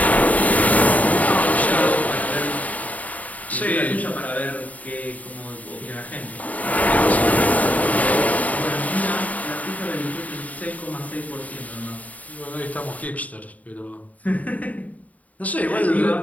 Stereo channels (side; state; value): right; late; 0.072 ms